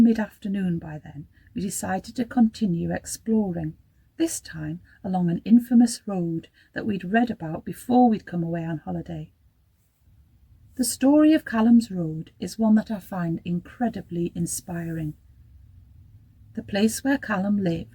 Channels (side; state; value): both; identical; correlation 1.00